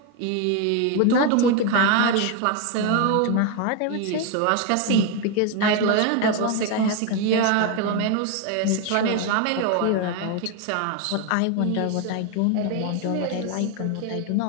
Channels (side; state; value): both; different; correlation 0.01